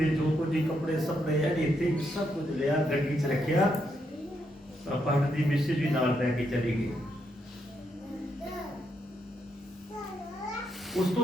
ਜੋ ਕੁਝ ਕੱਪੜੇ ਸਪੜੇ ਆ ਇੱਥੇ ਸਭ ਕੁਝ ਲਿਆ, ਗੱਡੀ 'ਚ ਰੱਖਿਆ। ਪਾਸਟਰ ਦੀ ਮਿਸਿਸ ਵੀ ਨਾਲ ਲੈ ਕੇ ਚਲੀ ਗਈ। ਉਸ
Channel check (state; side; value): normal; both; correlation 0.79